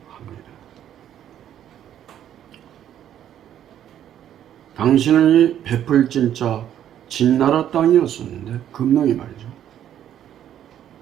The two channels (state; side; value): quieter; left; 10.6 dB